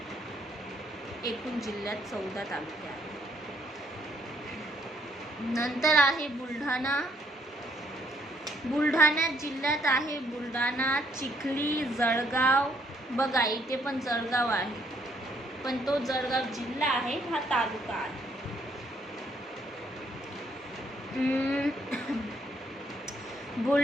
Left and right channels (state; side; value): normal; both; correlation 0.68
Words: एकूण जिल्ह्यात 14 तालुके आहेत. नंतर आहे बुलढाणा. बुलढाणा जिल्ह्यात आहे बुलढाणा, चिखली, जळगाव. बघा इथे पण जळगाव आहे, पण तो जळगाव जिल्हा आहे, हा तालुका आहे.